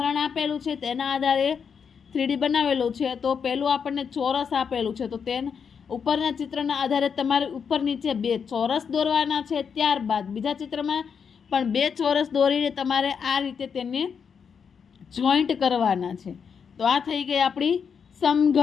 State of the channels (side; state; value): right; quieter; 6.6 dB